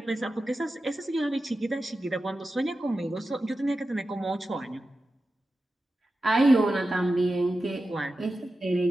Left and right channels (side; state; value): both; normal; correlation 0.92